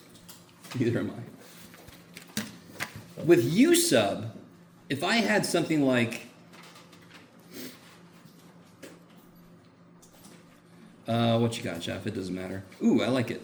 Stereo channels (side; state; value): both; identical; correlation 1.00